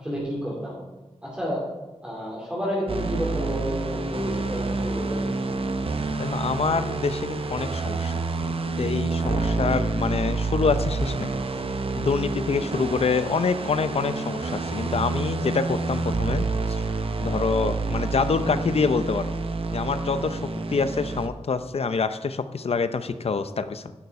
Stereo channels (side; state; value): both; normal; correlation 0.63